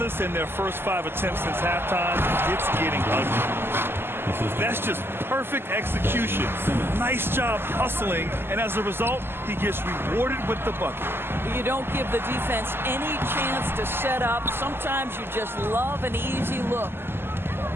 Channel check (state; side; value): late; left; 0.11 ms